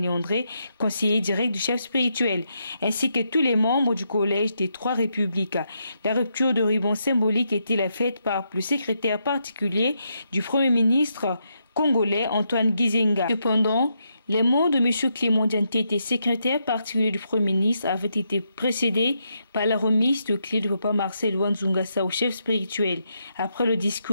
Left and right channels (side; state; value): both; inverted; correlation -0.81